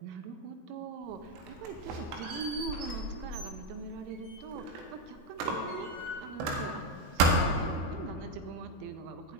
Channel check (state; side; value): late; left; 19 ms